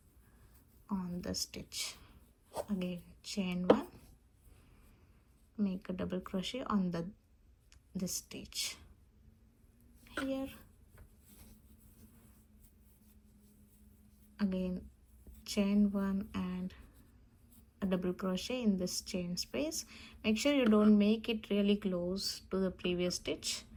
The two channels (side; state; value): both; identical; correlation 1.00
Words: on the stitch, again chain 1, make a double crochet on this stitch here, again chain 1 and a double crochet in this chain space. Make sure you don't make it really close to the previous stitch,